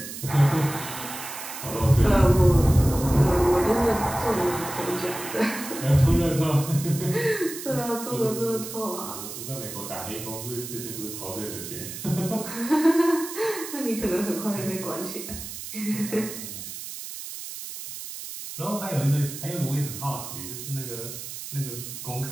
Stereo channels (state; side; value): noise; right; hiss, 9 dB below the sound